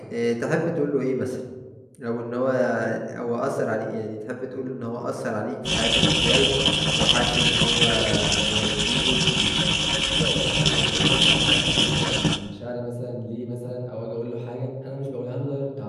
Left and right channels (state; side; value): identical; both; correlation 1.00